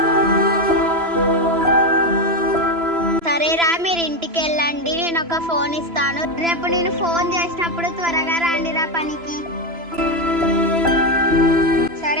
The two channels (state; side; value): late; left; 3.0 ms